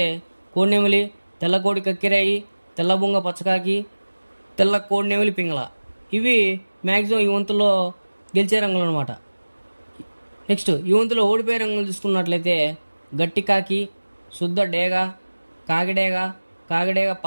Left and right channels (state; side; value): inverted; both; correlation -1.00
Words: కోడినెమిలి, తెల్ల కోడి కక్కిరాయి, తెల్ల బొంగ పచ్చకాకి, తెల్ల కోడినెమిలి పింగళ. ఇవి మ్యాక్సిమం ఈ వంతులో గెలిచే రంగులు అనమాట. నెక్స్ట్ ఈ వంతులో ఓడిపోయే రంగులు చూసుకున్నట్లయితే గట్టి కాకి, శుద్ధ డేగ, కాకిడేగ